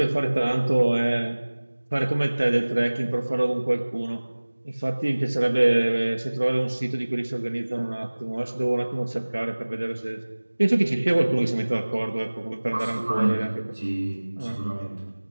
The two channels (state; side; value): inverted; both; correlation -1.00